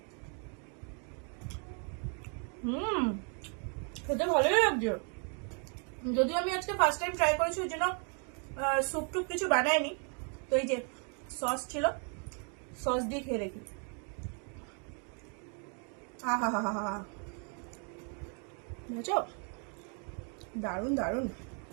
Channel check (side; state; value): left; quieter; 39.9 dB